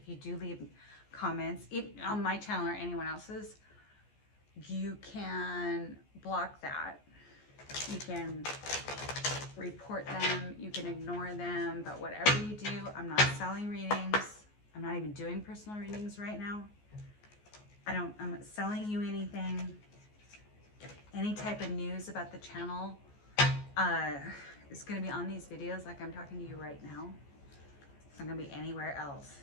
you do leave comments on my channel or anyone else's, you can block that. You can report them, you can ignore them, but whatever you do, I'm not selling readings. I'm not even doing personal readings right now. I'm not selling you anything. Any type of news about the channel is going to be on these videos like I'm talking to you right now. It's not going to be anywhere else.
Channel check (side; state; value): right; late; 14 ms